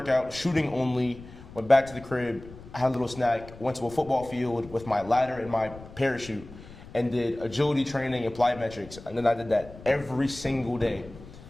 shooting only, went back to the crib, had a little snack, went to a football field with my ladder and my parachute, and did agility training and plyometrics. And then I did that every single day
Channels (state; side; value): noise; left; rumble, 17 dB below the sound